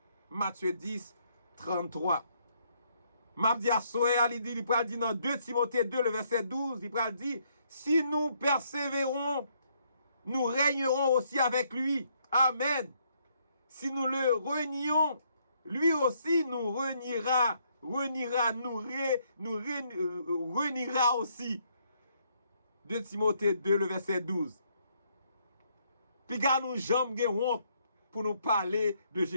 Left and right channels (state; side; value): inverted; both; correlation -0.71